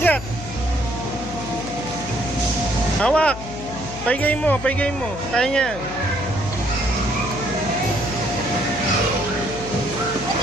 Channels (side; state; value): left; noise; hum, 12 dB below the sound